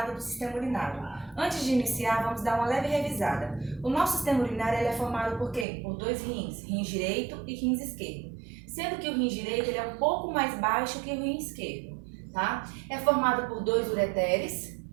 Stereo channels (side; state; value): left; drops out; at 5.7 s